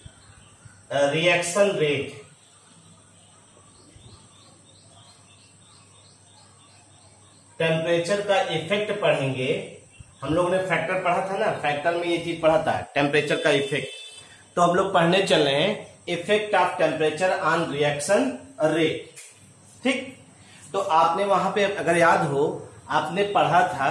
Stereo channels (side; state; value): both; identical; correlation 1.00